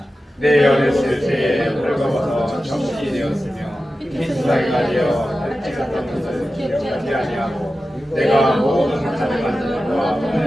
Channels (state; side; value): normal; both; correlation 0.93